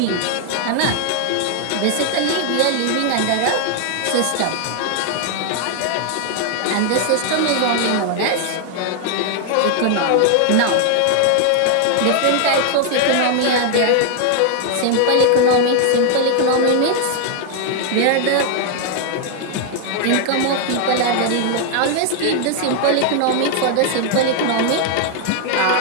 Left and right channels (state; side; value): different; both; correlation 0.00